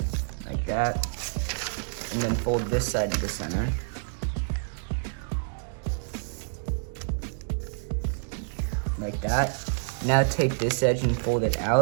like that. And then fold this side to the center. Like that. Now take this edge and fold it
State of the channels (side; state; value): left; silent; digital silence